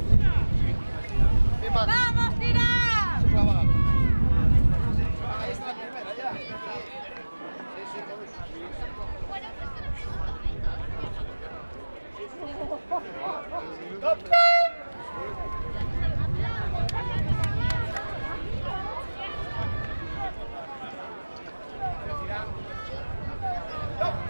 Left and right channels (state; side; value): inverted; both; correlation -1.00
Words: Misma. ¡Vamos, tirar! Se clava.